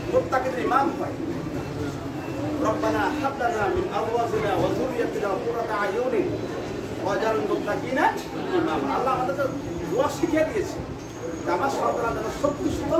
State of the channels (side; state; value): both; identical; correlation 1.00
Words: মুত্তাকিদের ইমাম হয়। রব্বানা হাব লানা মিন আজওয়াজিনা ওয়া যুররিয়াতিনা কুররাতা আয়ুনিন ওয়াজআলনা মুত্তাকিনা ইমামা। আল্লাহ আমাদেরকে দোয়া শিখিয়ে দিয়েছে নামাজ পড়া যেন সত্যি